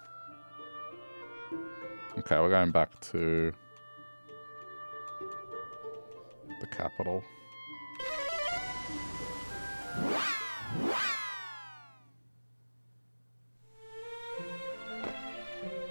Okay, we're going back to the capital.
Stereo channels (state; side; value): inverted; both; correlation -1.00